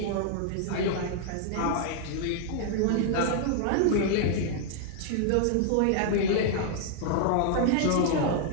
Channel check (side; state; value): both; different; correlation 0.00